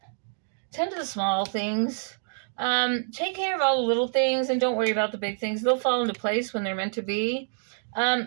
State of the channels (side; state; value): left; silent; digital silence